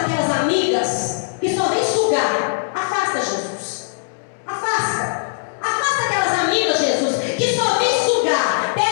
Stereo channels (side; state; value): right; silent; 66 dB below the other